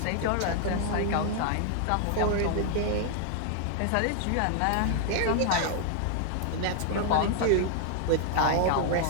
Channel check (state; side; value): different; both; correlation 0.00